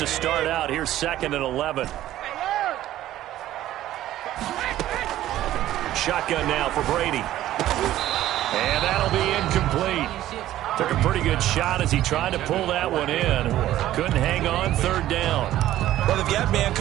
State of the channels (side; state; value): left; quieter; 13.7 dB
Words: start out, here's 2nd and 11. Shotgun now for Brady. And that'll be incomplete. Took a pretty good shot as he tried to pull that one in. Couldn't hang on, 3rd down. Well, they've got man